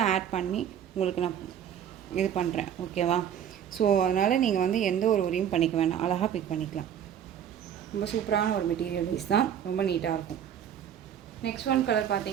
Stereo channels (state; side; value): quieter; left; 9.3 dB